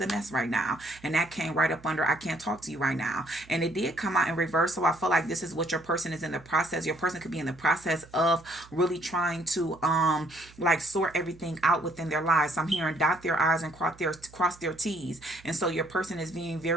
a mess right now, and that came right up under I can't talk to you right now, and it did come out in reverse. So I feel like this is what your person is in the process. Your person could be in the process of really trying to like sort everything out within their lives. I'm hearing dot their I's and cross their T's. And so your person is being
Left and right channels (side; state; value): right; noise; hum, 24 dB below the sound